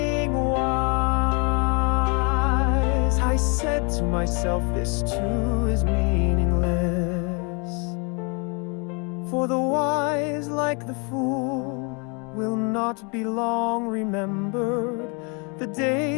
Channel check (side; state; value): right; quieter; 33.7 dB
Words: wise? I said to myself, this too is meaningless. For the wise, like the fool, will not be long remembered. The